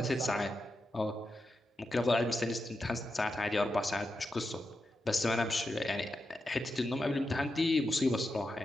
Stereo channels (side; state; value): both; normal; correlation 0.87